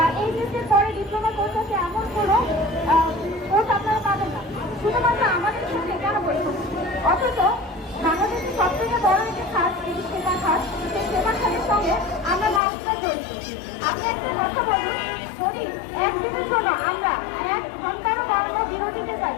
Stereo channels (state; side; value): drops out; right; at 12.6 s